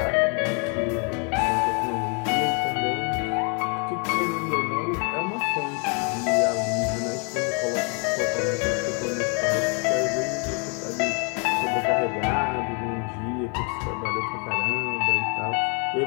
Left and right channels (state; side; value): quieter; right; 36.5 dB